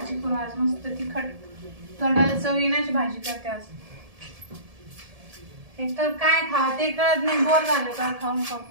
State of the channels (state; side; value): late; left; 1.7 ms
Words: करू आज, मस्त तिखट तोंडाला चव येण्याची भाजी करते आज. एक तर काय खावं ते कळत नाही, बोर झालं का खाऊन